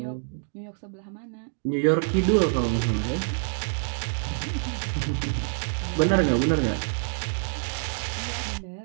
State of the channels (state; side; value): silent; left; digital silence